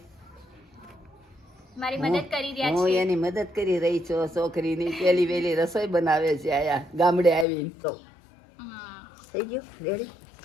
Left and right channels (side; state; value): right; drops out; at 7.5 s